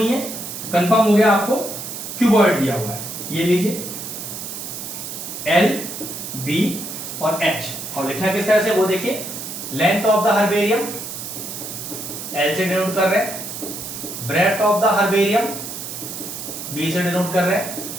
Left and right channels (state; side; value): noise; right; hiss, 8 dB below the sound